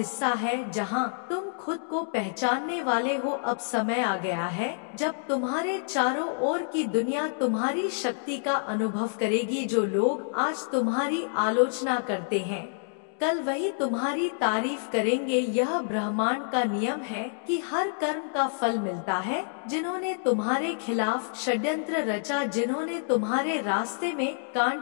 है जहां तुम खुद को पहचानने वाले हो। अब समय आ गया है जब तुम्हारे चारों ओर की दुनिया तुम्हारी शक्ति का अनुभव करेगी। जो लोग आज तुम्हारी आलोचना करते हैं कल वही तुम्हारी तारीफ करेंगे। यह ब्रह्मांड का नियम है कि हर कर्म का फल मिलता है। जिन्होंने तुम्हारे खिलाफ षड्यंत्र रचा, जिन्होंने तुम्हारे रास्ते में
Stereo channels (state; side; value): silent; right; digital silence